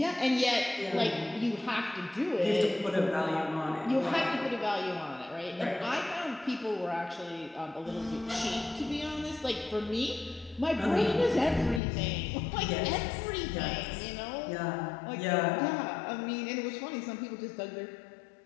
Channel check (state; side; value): drops out; right; at 11.8 s